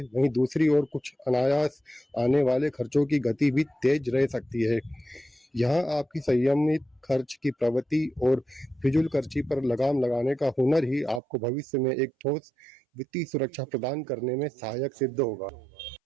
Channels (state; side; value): drops out; left; at 11.2 s